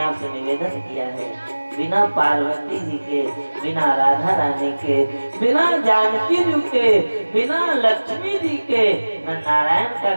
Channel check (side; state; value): both; inverted; correlation -1.00